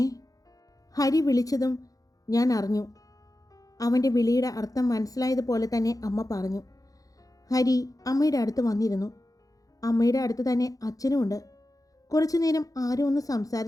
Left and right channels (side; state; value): right; late; 0.17 ms